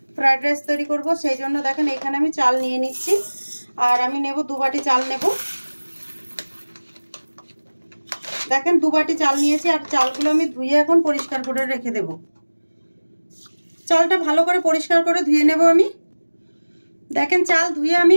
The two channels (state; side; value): inverted; both; correlation -1.00